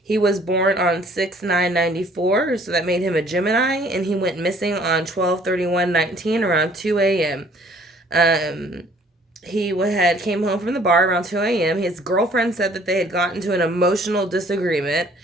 He was born on 6/9/94, so that made him a Gemini, and he went missing on 12/31/19 around 2 a.m. He had came home from the bar around 2 a.m. His girlfriend said that they had gotten into an emotional disagreement,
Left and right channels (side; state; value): both; normal; correlation 0.57